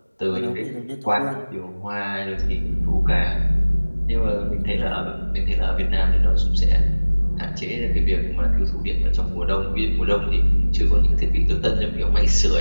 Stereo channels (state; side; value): inverted; both; correlation -1.00